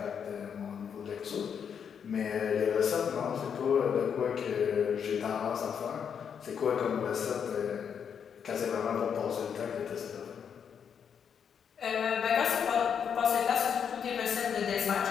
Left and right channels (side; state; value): right; quieter; 7.4 dB